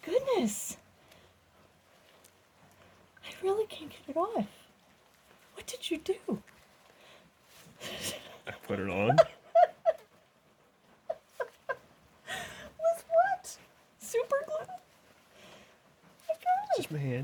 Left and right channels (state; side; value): identical; both; correlation 1.00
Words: goodness. I really can't get it off. What did you do? I put it on. With what? Super glue? My God. Just my